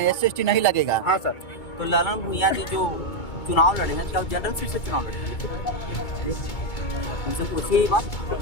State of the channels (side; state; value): right; late; 2.2 ms